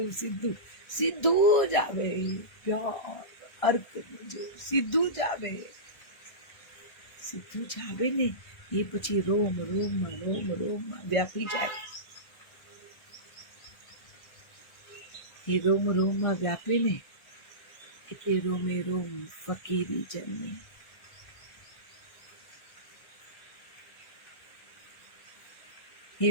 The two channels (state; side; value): late; right; 1.5 ms